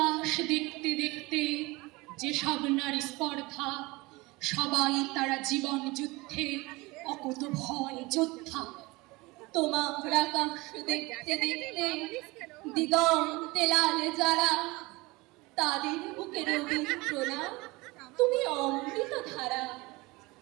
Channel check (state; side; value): quieter; left; 23.0 dB